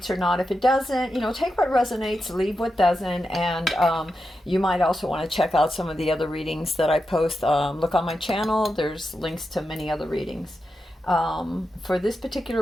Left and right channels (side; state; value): both; normal; correlation 0.88